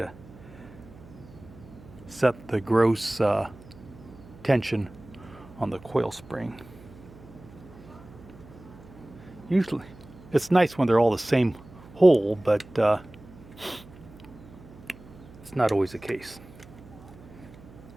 set the gross tension on the coil spring. Usually it's nice when they're all the same hole, but it's not always the case.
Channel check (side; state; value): right; noise; hum, 20 dB below the sound